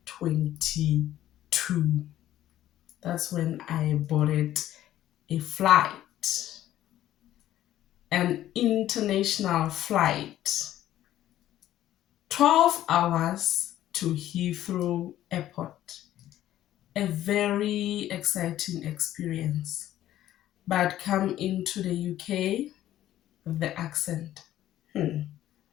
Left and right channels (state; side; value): quieter; right; 13.0 dB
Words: That's when I boarded a flight. an international flight, 12 hours to Heathrow Airport. A very exciting experience. But come into the UK, the accent.